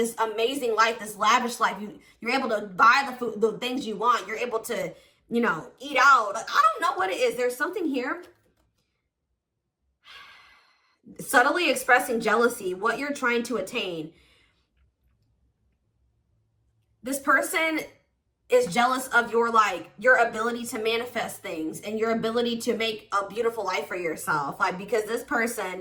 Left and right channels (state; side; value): identical; both; correlation 1.00